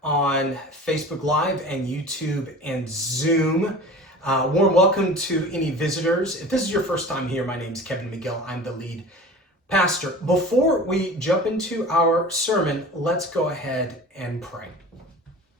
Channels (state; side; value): normal; both; correlation 0.38